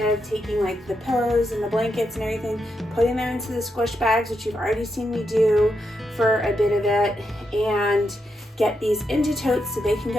taking like the pillows and the blankets and everything, putting them into the squish bags, which you've already seen me do for a bit of it, and get these into totes so they can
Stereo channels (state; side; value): normal; both; correlation 0.83